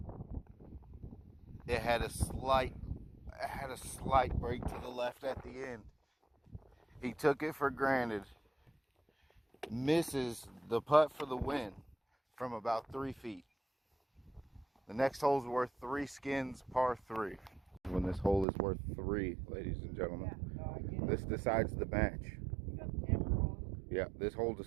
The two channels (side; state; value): left; drops out; at 18.4 s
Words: It had a slight break to the left at the end. He took it for granted. Misses the putt for the win from about 3 feet. The next hole's worth 3 skins, par 3. When this hole is worth 3, ladies and gentlemen. Yeah, no, I get it. This decides the match. You got the camera rolling? Yeah, this hole